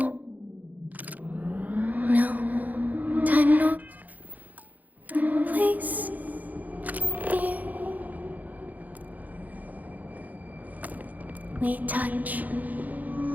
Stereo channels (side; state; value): left; late; 0.080 ms